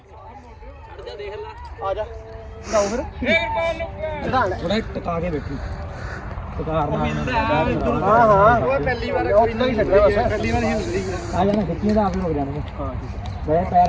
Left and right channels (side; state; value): both; identical; correlation 1.00